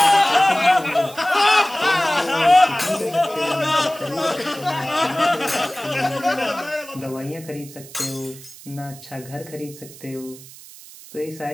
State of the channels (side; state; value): right; noise; hiss, 18 dB below the sound